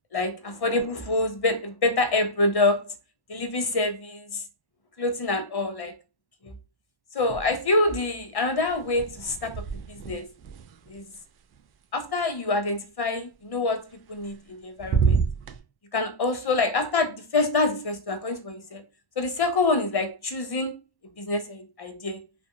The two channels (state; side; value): late; right; 1.1 ms